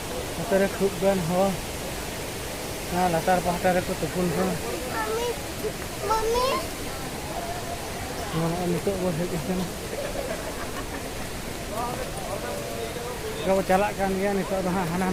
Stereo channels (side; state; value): both; identical; correlation 1.00